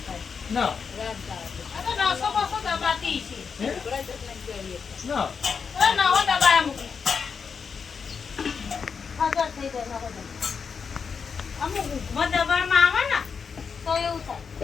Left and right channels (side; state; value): right; quieter; 5.9 dB